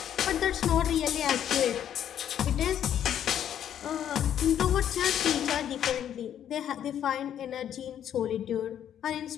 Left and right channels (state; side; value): quieter; right; 10.0 dB